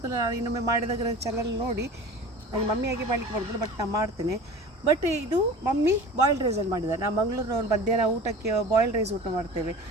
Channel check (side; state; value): both; normal; correlation 0.38